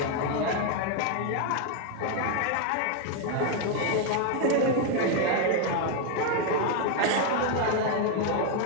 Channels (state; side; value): different; both; correlation 0.01